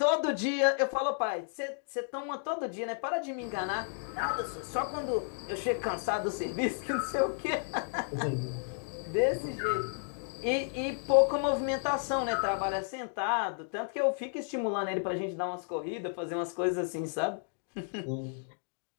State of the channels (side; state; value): right; silent; digital silence